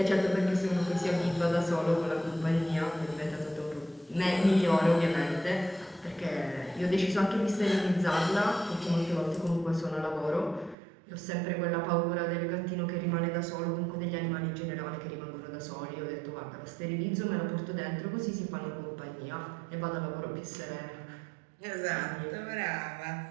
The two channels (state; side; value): drops out; left; at 10.8 s